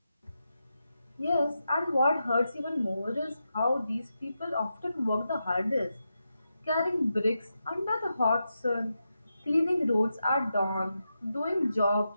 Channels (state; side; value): inverted; both; correlation -0.87